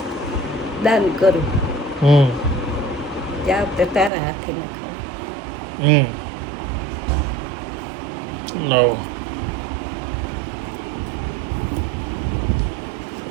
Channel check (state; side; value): drops out; left; at 4.1 s